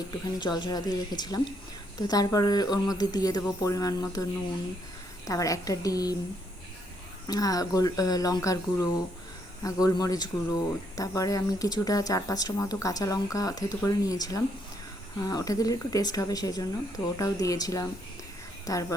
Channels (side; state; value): both; normal; correlation 0.73